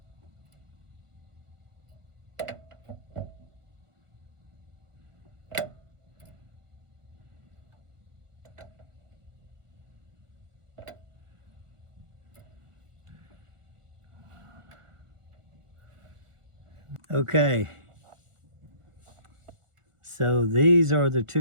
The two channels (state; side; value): late; left; 1.4 ms